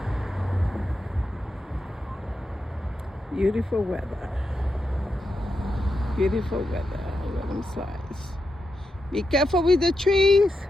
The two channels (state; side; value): normal; both; correlation 0.86